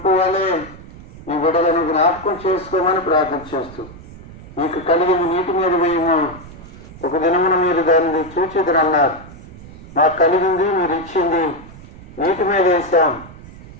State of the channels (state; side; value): noise; right; rumble, 18 dB below the sound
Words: వలె మీ బిడ్డలను జ్ఞాపకం చేసుకోమని ప్రార్థన చేస్తూ, మీకు కలిగిన నీటి మీద మేము ఒక దినమున మీరు దాన్ని చూచిదరన్నారు. మాకు కలిగింది మీరు ఇచ్చింది, నీటి మీద వేసాం.